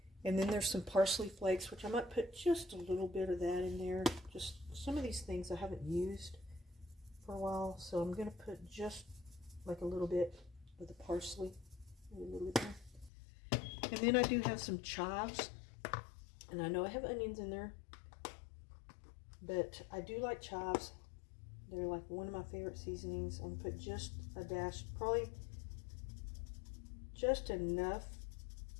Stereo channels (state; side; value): drops out; right; at 13.1 s